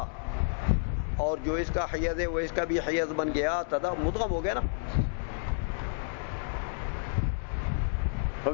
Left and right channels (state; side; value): silent; right; 58 dB below the other